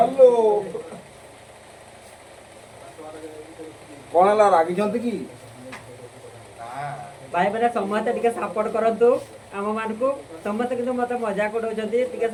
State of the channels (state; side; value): identical; both; correlation 1.00